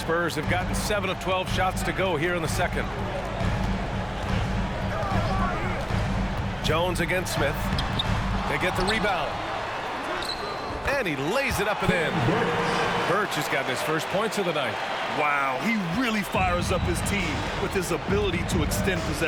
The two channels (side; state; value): both; identical; correlation 1.00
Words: have gotten 7 of 12 shots to go here in the second. Jones against Smith. They get the rebound. And he lays it up and in. Birch has gotten his first points of the night. Wow, he really fires up his team with his ability to extend